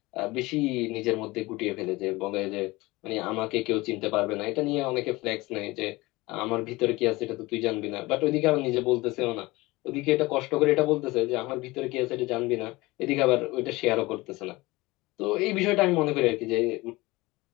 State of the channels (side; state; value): right; quieter; 21.3 dB